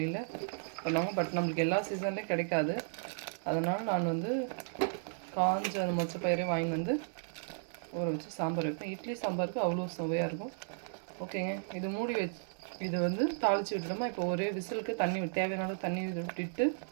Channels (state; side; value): silent; left; digital silence